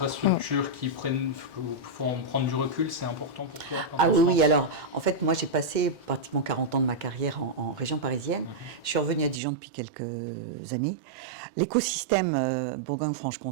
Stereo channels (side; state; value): left; drops out; at 9.4 s